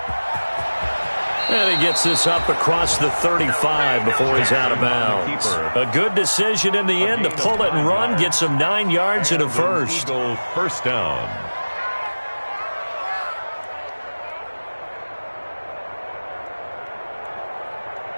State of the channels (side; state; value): both; inverted; correlation -1.00